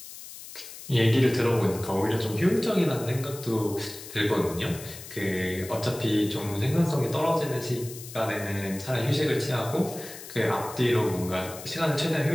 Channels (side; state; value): left; noise; hiss, 14 dB below the sound